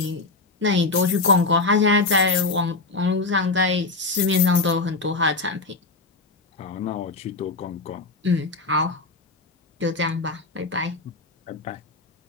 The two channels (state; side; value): quieter; right; 3.6 dB